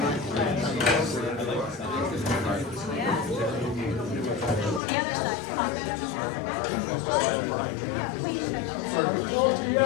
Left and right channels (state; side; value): drops out; right; at 4.8 s